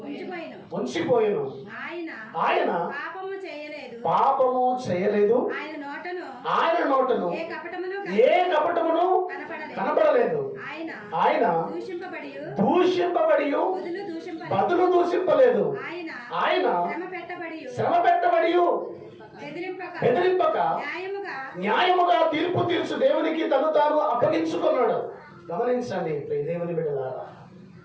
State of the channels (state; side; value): identical; both; correlation 1.00